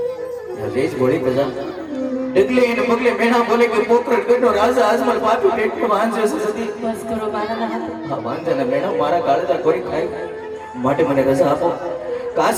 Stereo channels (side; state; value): both; identical; correlation 1.00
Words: રેજ ભળી પ્રજા ડગલે એને પગલે મેણા બોલે કે પોકરણ ગઢનો રાજા આજમલ પાટું પેટમાં વાંજે છે સતી બસ કરો મારા નાથ હા વાંજાને મેણા મારા કાળજા કોઈ ખાય માટે મને રજા આપો